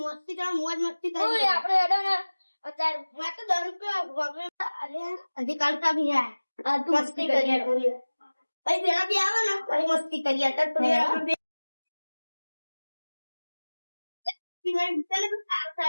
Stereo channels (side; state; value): both; inverted; correlation -1.00